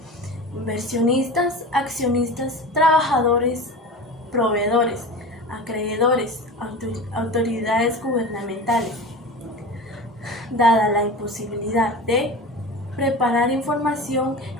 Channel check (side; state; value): both; normal; correlation 0.32